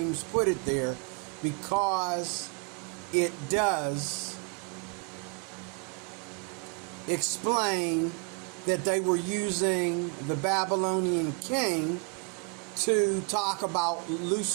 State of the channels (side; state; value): left; quieter; 34.8 dB